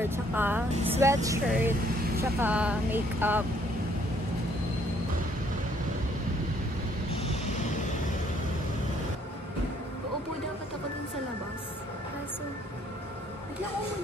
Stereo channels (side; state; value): both; normal; correlation 0.65